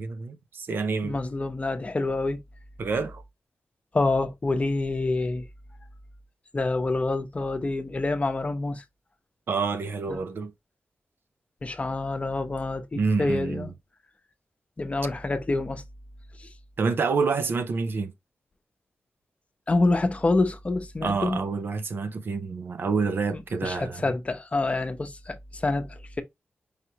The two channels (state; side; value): normal; both; correlation 0.86